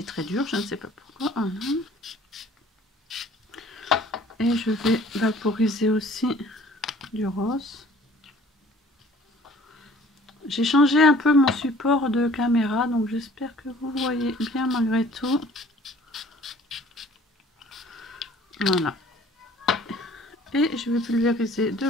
très dur, je ne sais pas pourquoi. Et je vais vaporiser aussi du rose. J'ai changé un peu mon support de caméra, donc j'espère que vous voyez bien malgré tout. Voilà. Et je vais pulvériser de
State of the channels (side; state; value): both; normal; correlation 0.52